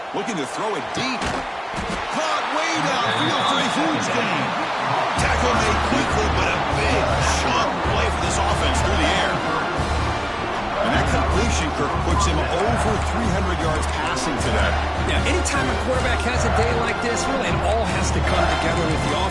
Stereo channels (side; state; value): both; identical; correlation 1.00